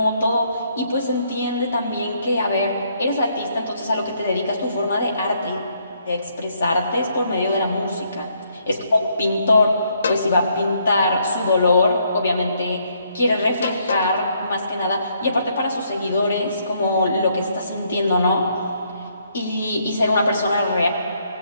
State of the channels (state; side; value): inverted; both; correlation -0.71